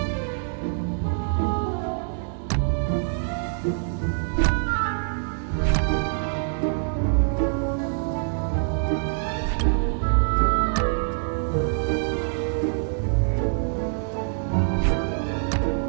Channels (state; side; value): silent; left; digital silence